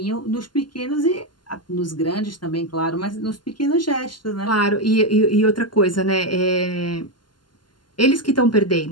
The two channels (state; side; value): late; right; 0.71 ms